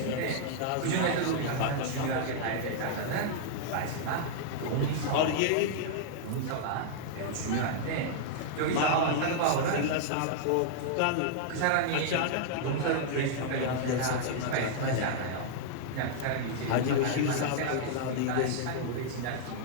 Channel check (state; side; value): different; both; correlation -0.01